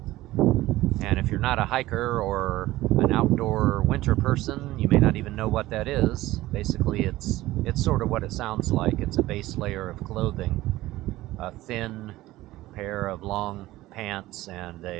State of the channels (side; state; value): left; quieter; 17.0 dB